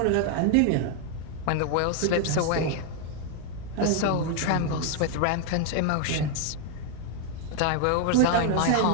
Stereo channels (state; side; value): different; both; correlation 0.00